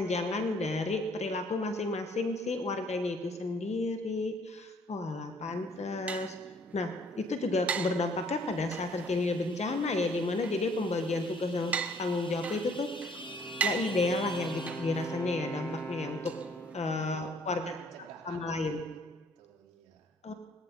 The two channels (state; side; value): normal; both; correlation 0.61